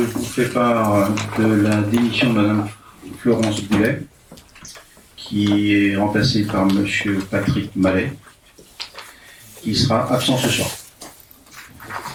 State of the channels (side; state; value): both; identical; correlation 1.00